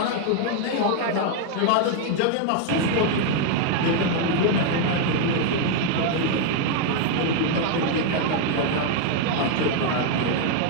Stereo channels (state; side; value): different; both; correlation 0.00